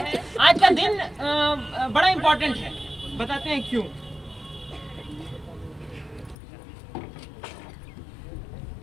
आज का दिन बड़ा इंपॉर्टेंट है, बताते हैं क्यों।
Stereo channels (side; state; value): right; drops out; at 6.4 s